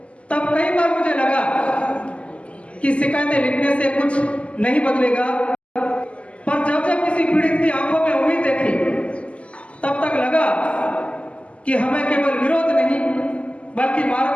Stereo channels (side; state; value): right; late; 0.059 ms